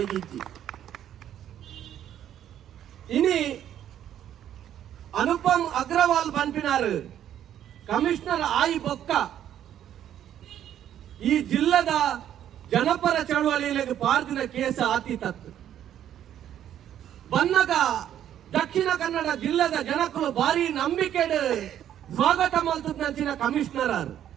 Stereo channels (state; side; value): quieter; left; 10.7 dB